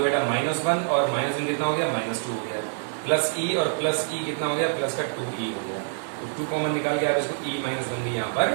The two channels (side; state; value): left; silent; digital silence